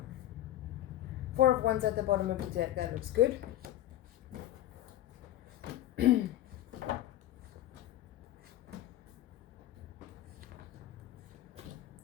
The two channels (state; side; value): quieter; right; 13.4 dB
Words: 4 of Wands at the bottom of the deck, that looks good. I'm